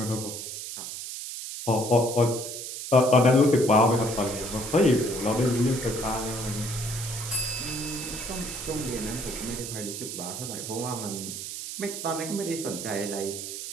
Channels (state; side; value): noise; right; hiss, 7 dB below the sound